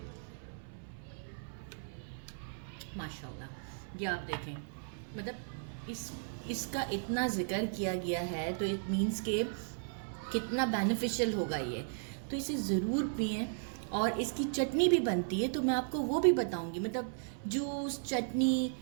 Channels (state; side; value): silent; left; 54 dB below the other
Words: माशाल्लाह। ये आप देखें, मतलब इसका इतना जिक्र किया गया है, तो इट मीन्स के कितना बेनिफिशियल होगा ये। तो इसे ज़रूर पिएं। और इसकी चटनी भी बनती है, तो मैं आपको वो भी बताऊंगी। मतलब जूस, चटनी